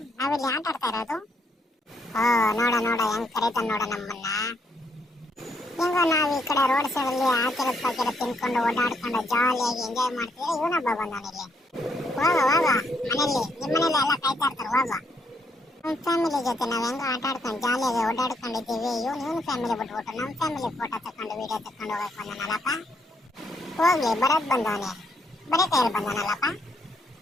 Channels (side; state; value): both; normal; correlation 0.74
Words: ನಾವಿಲ್ಲಿ ಆಟ ಆಡ್ತಾ ಇರೋದು. ಓ ನೋಡ ನೋಡ ಹೆಂಗ್ ಕರೀತಾನ ನೋಡ ನಮ್ಮನ್ನ. ಹೆಂಗೋ ನಾವು ಈ ಕಡೆ ರೋಡ್ ಸೈಡ್ ಅಲ್ಲಿ ಹಾಕಿರೋದು ಪಾಕಿರೋದು ತಿನ್ಕೊಂಡು ಓಡಾಡ್ಕೊಂಡು ಜಾಲಿಯಾಗಿ ಎಂಜಾಯ್ ಮಾಡ್ತಿದ್ರೆ ಇವನೊಬ್ಬ ಬಂದವನಿಲ್ಲಿ. ಹೋಗ ಹೋಗ ಮನೇಲಿ, ನಿಮ್ಮ ಮನೇಲಿ ಎಲ್ಲ ಕಾಯ್ತಾ ಇರ್ತಾರೆ. ಹೋಗ ನಮ್ಮ ಫ್ಯಾಮಿಲಿ ಜೊತೆ ನಾವು ಹೆಂಗ ಆಟ ಆಡ್ಕೊಂಡು ಜಾಲಿಯಾಗಿ ಓಡಾಡ್ಕೊಂಡಿದ್ದೀವಿ. ಇವನು ಫ್ಯಾಮಿಲಿ ಬಿಟ್ಬಿಟ್ಟು ನಮ್ಮ ಫ್ಯಾಮಿಲಿ ಫೋಟೋ ತಕೊಂಡು ವಿಡಿಯೋ ತಕೊಂಡು ಹೋಗಕ್ ಬಂದನಲ್ಲಪ್ಪ. ಹೋಗ್ಲಿ ಬರೋದ್ ಬಂದವನೇ, ಬರೀ ಕೈಯಲ್ಲಿ ಬಂದನಲ್ಲಪ್ಪ.